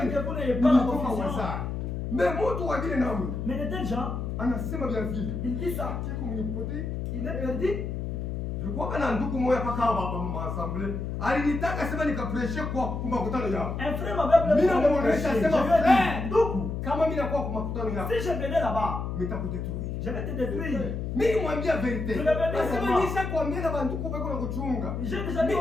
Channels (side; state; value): left; noise; hum, 4 dB below the sound